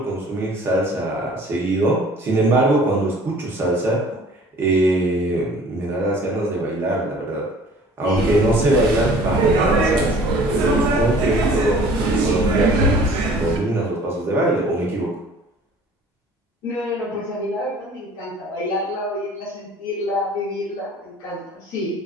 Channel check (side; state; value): both; normal; correlation 0.50